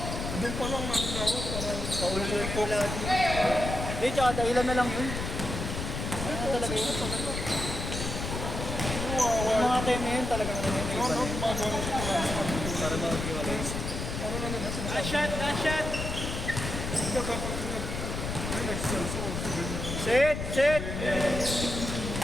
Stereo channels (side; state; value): left; noise; rumble, 4 dB below the sound